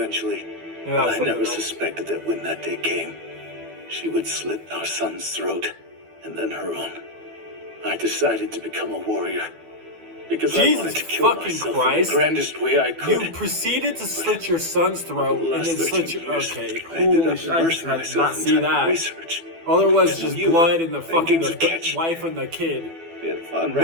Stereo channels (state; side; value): late; left; 12 ms